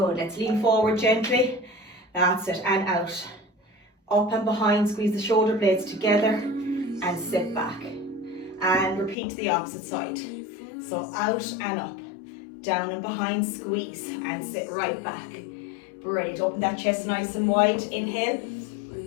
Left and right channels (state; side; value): drops out; right; at 9.2 s